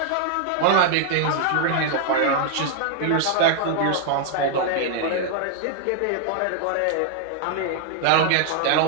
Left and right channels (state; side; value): different; both; correlation 0.00